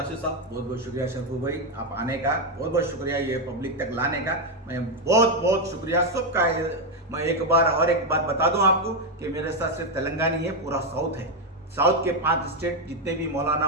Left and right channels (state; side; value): normal; both; correlation 0.05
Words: साहब। बहुत बहुत शुक्रिया शरफू भाई, आप आने का बहुत बहुत शुक्रिया, ये पब्लिक तक लाने का मैं बहुत बहुत शुक्रिया सबका। मैं एक बात बता दूं आपको कि मेरे साथ सिर्फ तेलंगाना ही है, पूरा साउथ है। साउथ के 5 स्टेट जितने भी मौलाना